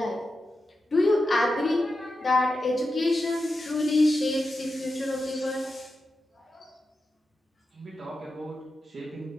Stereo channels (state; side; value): normal; both; correlation 0.90